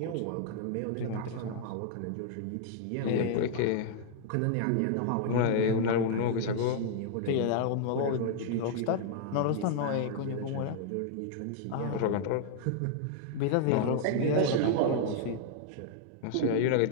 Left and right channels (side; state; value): both; different; correlation -0.01